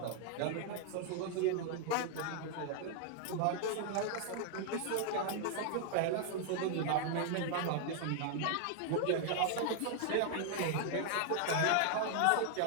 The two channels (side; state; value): both; different; correlation 0.00